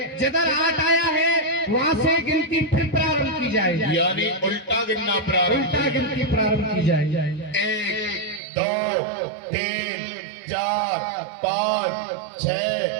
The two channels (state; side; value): drops out; left; at 8.4 s